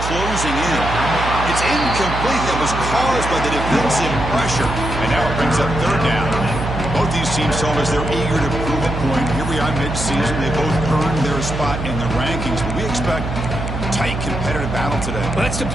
closing in. It's incomplete. That was caused by the defensive pressure. And now it brings up third down. Both these teams told us they're eager to prove a point. Here we are mid-season. They both earned their spot in the rankings. But we expect tight competitive battle today. Well, that's the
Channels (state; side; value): noise; right; hum, 5 dB below the sound